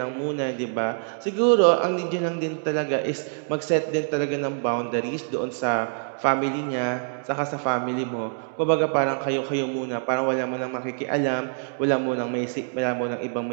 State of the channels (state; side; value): silent; left; digital silence